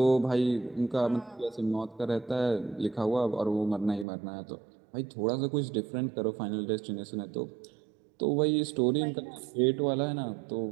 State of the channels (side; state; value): left; drops out; at 4.0 s